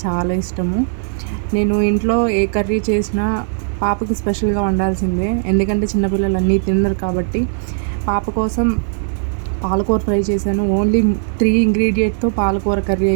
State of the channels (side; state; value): left; silent; digital silence